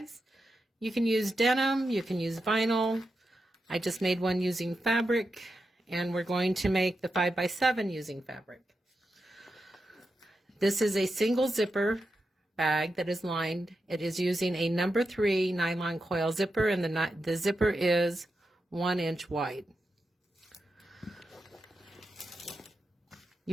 You can use denim, you can use vinyl. I just made one using fabric, and we're going to make the 5x7 using fabric. This is a single zipper bag that is lined. It is using a number 3 nylon coil zipper, and the zipper is 1 inch wide.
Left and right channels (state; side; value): normal; both; correlation 0.88